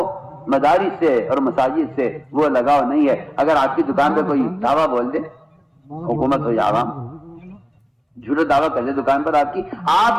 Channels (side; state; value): both; identical; correlation 1.00